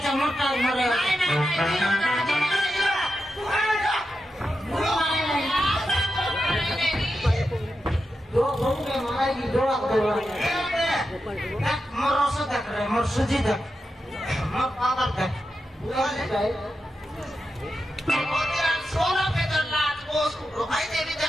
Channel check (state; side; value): normal; both; correlation 0.89